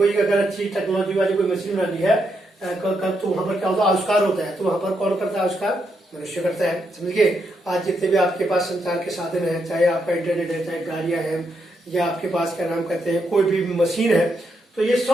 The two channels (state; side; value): normal; both; correlation 0.80